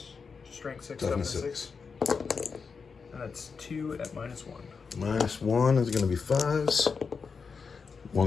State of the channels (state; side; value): quieter; right; 5.3 dB